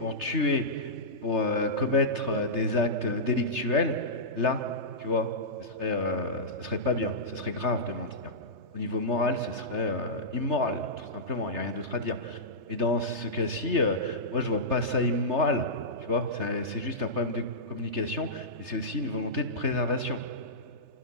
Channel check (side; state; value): left; late; 3.3 ms